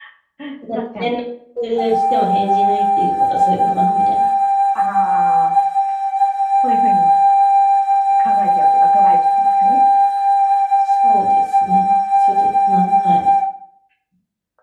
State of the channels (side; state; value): both; identical; correlation 1.00